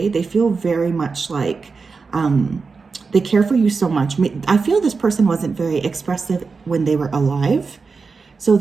They feel very much like they care for you so much. I feel this person wasn't very expressive when they were alive. So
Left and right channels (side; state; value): left; quieter; 4.7 dB